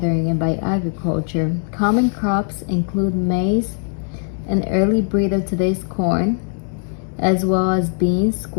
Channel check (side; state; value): right; silent; 66 dB below the other